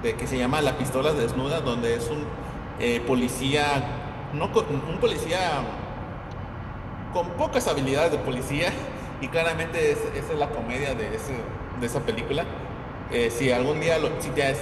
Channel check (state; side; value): identical; both; correlation 1.00